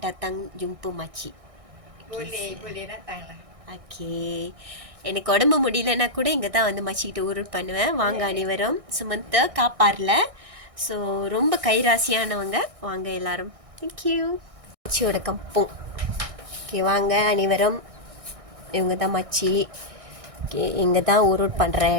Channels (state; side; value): late; left; 1.6 ms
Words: datang jumpa makcik. Boleh datang lah. Okay. எனக்கு உடம்பு முடியலன்னா கூட இங்கே தான் வந்து மச்சிக்கிட்டு ஊருட் பண்ணுவேன். வாங்க அனைவரும். சுமந்த காப்பாரில். ஸோ ரொம்ப கைராசியானவங்க. வாங்க எல்லாரும். தேங்க்யூ. மச்சியோட கம்பம். ஓகே, வாங்க அனைவரும். இவங்க தான் மச்சி. ஓகே, இங்கே தான் ஊருட் பண்ணுற